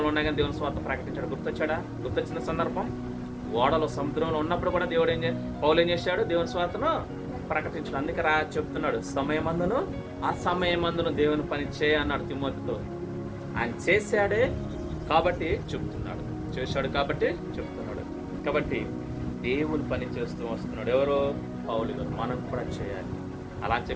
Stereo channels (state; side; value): identical; both; correlation 1.00